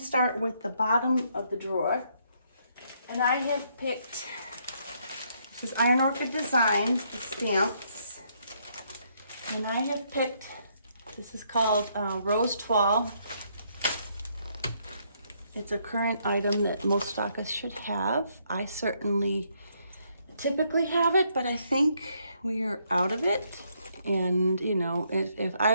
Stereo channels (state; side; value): inverted; both; correlation -0.72